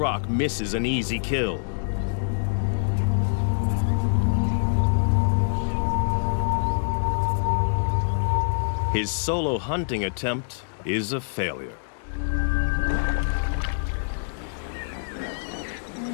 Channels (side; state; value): right; silent; digital silence